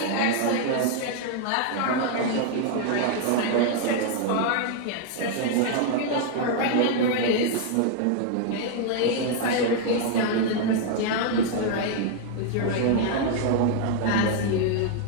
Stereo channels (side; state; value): both; different; correlation 0.00